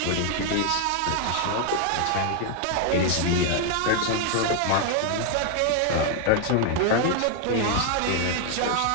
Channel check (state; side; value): different; both; correlation 0.00